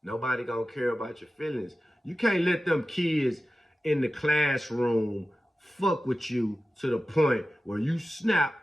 nobody gonna care about your feelings. You can't let them kids in the classroom fuck with you to the point where you snap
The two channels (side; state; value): both; normal; correlation 0.94